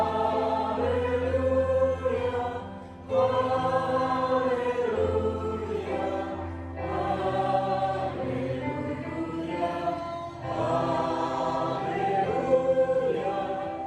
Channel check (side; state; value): both; identical; correlation 1.00